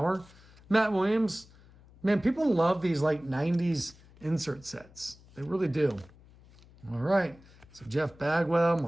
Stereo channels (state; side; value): noise; left; hum, 25 dB below the sound